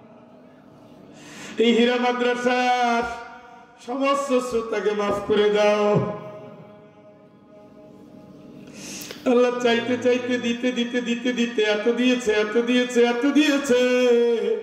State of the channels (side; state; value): both; identical; correlation 1.00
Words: এই হীরা মাদ্রাসার সমস্ত শ্রোতাকে মাফ করে দাও আল্লাহ। চাইতে চাইতে দিতে দিতে দিতে দিতে এত দিয়েছে, এত দিয়েছে, এত দিয়েছে,